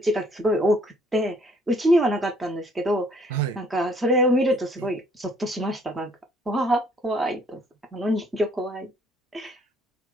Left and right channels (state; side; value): normal; both; correlation 0.62